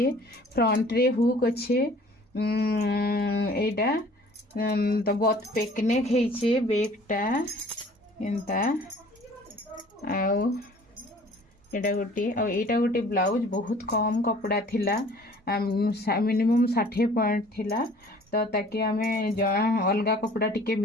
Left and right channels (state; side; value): normal; both; correlation 0.51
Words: फ्रंट रे हुक अच्छे एटा तो बोथ पेक नेक हेइछे बेकटा एंता आउ एटा गोटे ब्लाउज बहुत कम कपड़ा थिला मिनिमम 60 पॉइंट थिला तो ताकि आमे अलगा कपड़ा टिके